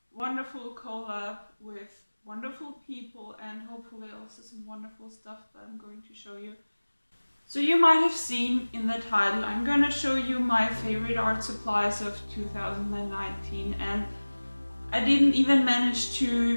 wonderful collab with wonderful people and hopefully also some wonderful stuff that I'm going to show you. So you might have seen in the title, I'm going to show you my favorite art supplies of 2019, and I didn't even manage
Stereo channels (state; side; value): inverted; both; correlation -1.00